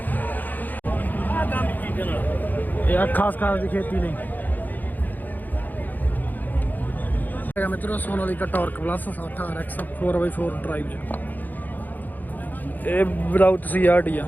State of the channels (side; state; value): right; late; 0.084 ms